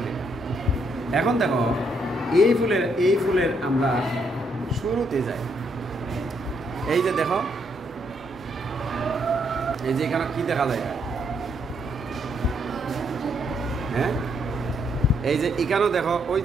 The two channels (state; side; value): normal; both; correlation 0.74